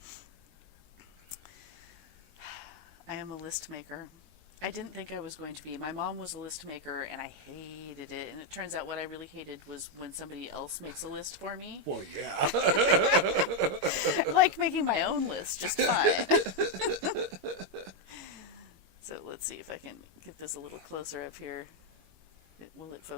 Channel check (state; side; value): late; left; 21 ms